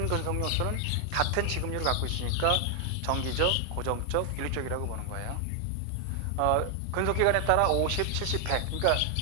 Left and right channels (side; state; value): both; different; correlation 0.00